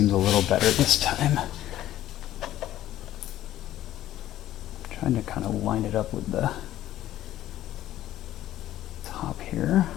a little better this time. Trying to kind of line it up with the top here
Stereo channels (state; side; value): quieter; right; 13.4 dB